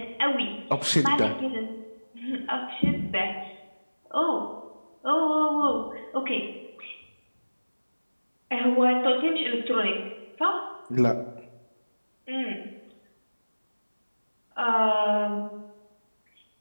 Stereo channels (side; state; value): both; inverted; correlation -1.00